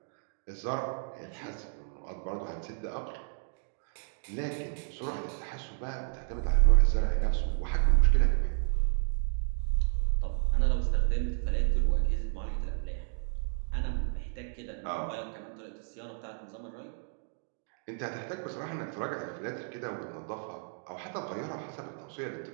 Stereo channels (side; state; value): left; silent; digital silence